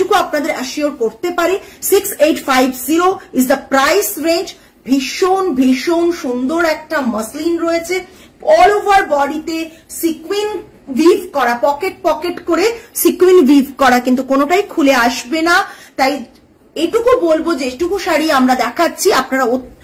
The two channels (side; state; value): both; identical; correlation 1.00